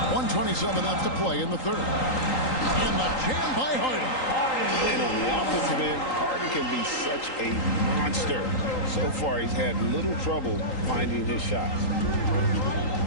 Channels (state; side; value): late; right; 3.8 ms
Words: 1:27 left to play in the 3rd. And the jam by Harden. And on the offensive end, Harden can be such a monster. So far, he's had little trouble finding his shots.